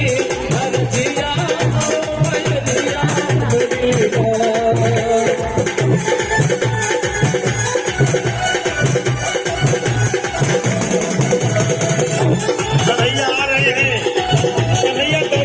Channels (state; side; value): identical; both; correlation 1.00